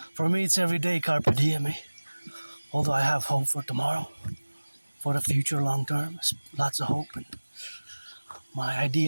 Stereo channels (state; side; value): inverted; both; correlation -1.00